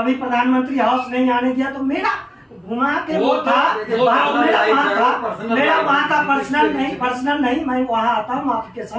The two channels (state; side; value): identical; both; correlation 1.00